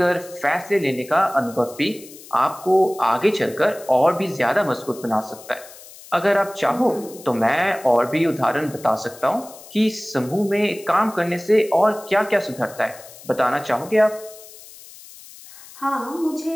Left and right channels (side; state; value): left; noise; hiss, 19 dB below the sound